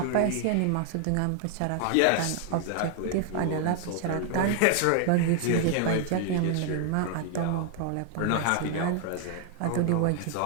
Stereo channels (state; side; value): different; both; correlation 0.00